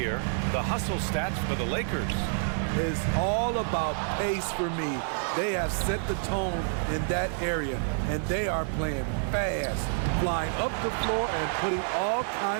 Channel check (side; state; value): left; silent; 59 dB below the other